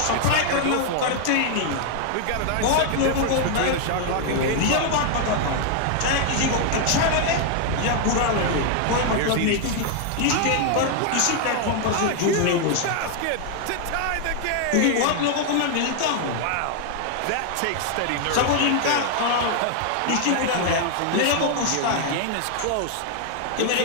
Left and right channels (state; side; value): different; both; correlation 0.00